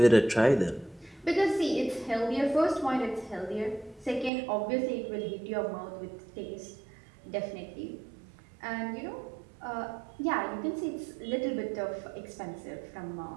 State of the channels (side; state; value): left; drops out; at 4.3 s